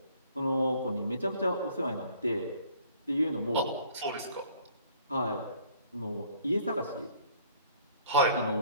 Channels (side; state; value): both; inverted; correlation -0.57